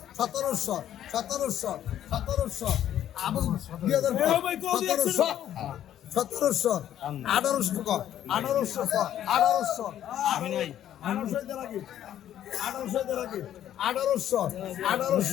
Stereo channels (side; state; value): right; quieter; 11.2 dB